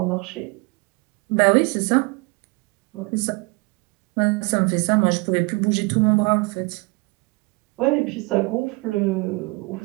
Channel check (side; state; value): left; quieter; 27.3 dB